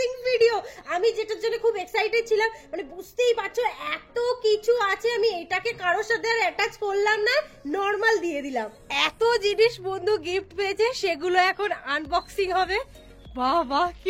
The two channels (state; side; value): identical; both; correlation 1.00